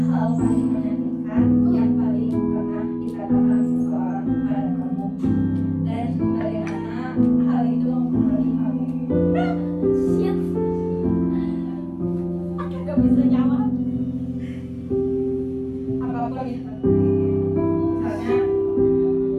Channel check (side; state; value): both; identical; correlation 1.00